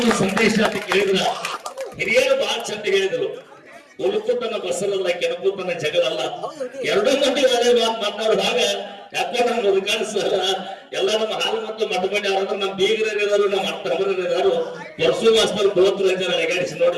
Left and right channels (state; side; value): identical; both; correlation 1.00